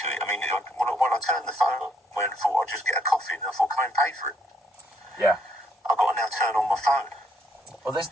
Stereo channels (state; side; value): normal; both; correlation 0.70